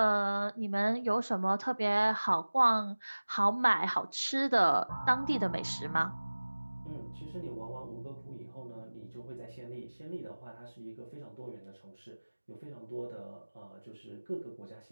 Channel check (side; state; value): both; inverted; correlation -1.00